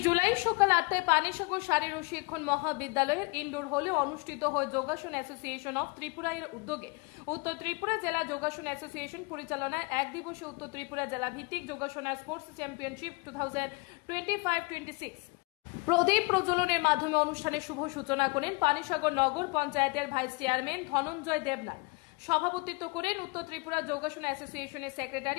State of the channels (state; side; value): quieter; right; 28.5 dB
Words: জুলাই সকাল 8টায় পানিসাগর শারীর ও শিক্ষণ মহাবিদ্যালয়ের ইনডোর হলে অনুষ্ঠিত হয় যোগাসন অ্যাসোসিয়েশন অফ ত্রিপুরা এর উদ্যোগে উত্তর ত্রিপুরা জেলা যোগাসন অ্যাসোসিয়েশন পরিচালনায় এক দিবসে উত্তর ত্রিপুরা জেলা ভিত্তিক যোগাসন স্পোর্টস চ্যাম্পিয়নশিপ 2025-26 প্রদীপ প্রজ্বলনের মাধ্যমে অনুষ্ঠানের শুভ সূচনা করেন পানিসাগর নগর পঞ্চায়েতের ভাইস চেয়ারম্যান ধনঞ্জয় দেবনাথ। সভাপতিত্ব করেন উত্তর ত্রিপুরা যোগাসন অ্যাসোসিয়েশনের